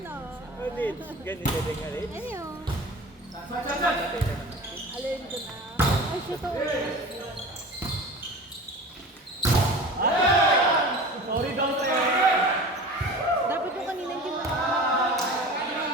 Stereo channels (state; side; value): normal; both; correlation 0.36